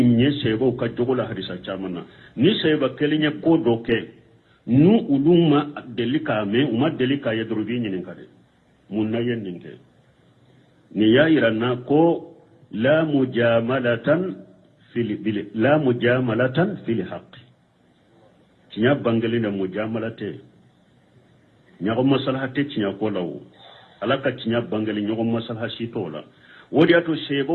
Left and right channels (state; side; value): identical; both; correlation 1.00